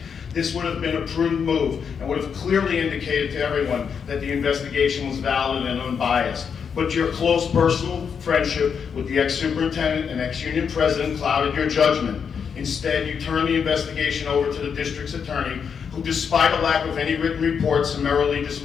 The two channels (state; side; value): quieter; right; 6.7 dB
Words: This would have been a prudent move and would have clearly indicated to everyone that the investigation was valid and unbiased. But your close personal friendship with the ex-superintendent and ex-union president clouded your judgment. Instead, you turned the investigation over to the district's attorney, who, despite a lack of any written report, summarily